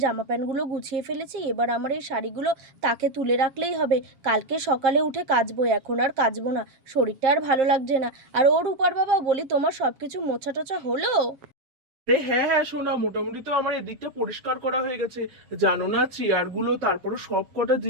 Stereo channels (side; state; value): left; late; 7.3 ms